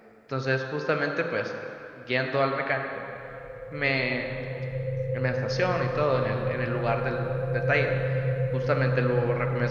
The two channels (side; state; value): both; identical; correlation 1.00